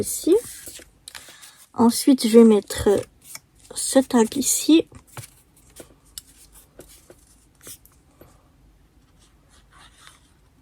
Ensuite, je vais mettre ce tag ici.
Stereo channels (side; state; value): both; identical; correlation 1.00